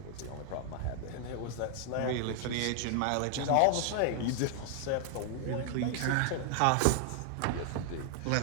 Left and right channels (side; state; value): both; different; correlation 0.00